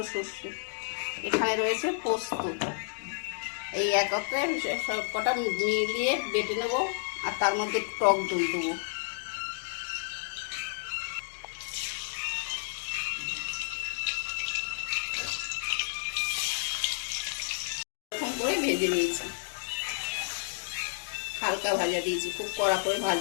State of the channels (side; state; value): right; silent; digital silence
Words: শস্য, এখানে রয়েছে পোস্ত। এই একত্রে সব কটা মিলিয়ে বেটে নেব, আর তার মধ্যে টক দই দেবো। এরকম করে ভেজে নিয়েছি, হালকা ভাজা দিয়েছি, খুব কড়া করে